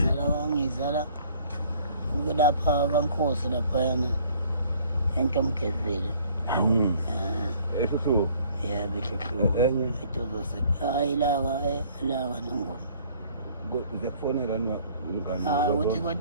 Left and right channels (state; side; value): inverted; both; correlation -0.56